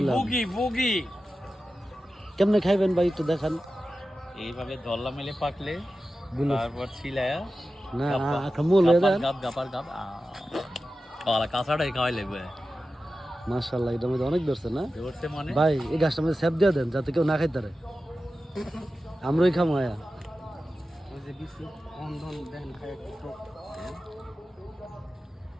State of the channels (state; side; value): normal; both; correlation 0.93